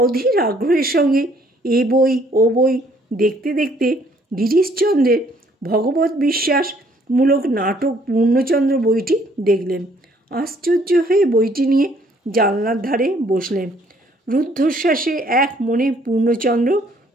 আগ্রহের সঙ্গে এ বই ও বই দেখতে দেখতে গিরিশচন্দ্রের ভগবত বিশ্বাসমূলক নাটক পূর্ণচন্দ্র বইটি দেখলেন। আশ্চর্য হয়ে বইটি নিয়ে জানলার ধারে বসলেন। রুদ্ধশ্বাসে এক মনে পূর্ণচন্দ্র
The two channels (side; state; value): both; normal; correlation 0.63